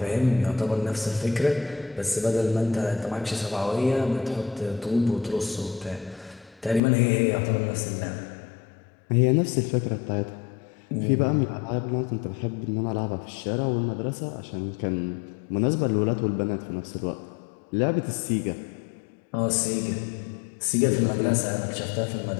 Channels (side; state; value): right; drops out; at 6.8 s